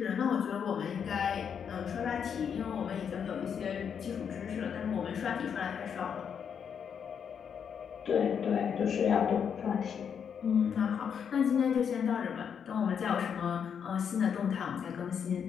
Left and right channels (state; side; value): quieter; right; 7.4 dB